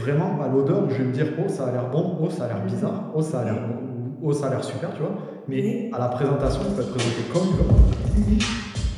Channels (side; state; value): both; identical; correlation 1.00